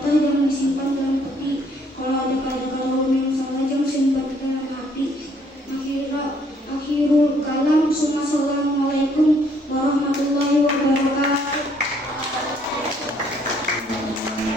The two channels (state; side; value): normal; both; correlation 0.65